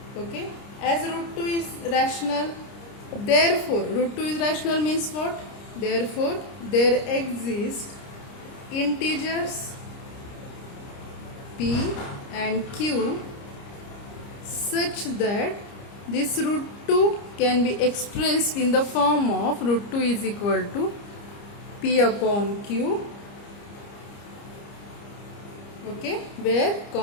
Okay, as root 2 is rational, therefore root 2 is rational means what? Therefore there exist integers p and q such that this root 2 can be expressed in the form of root 2 is equal to p upon q. Okay,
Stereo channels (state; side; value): late; right; 30 ms